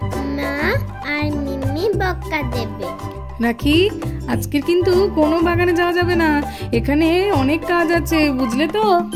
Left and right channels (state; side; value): identical; both; correlation 1.00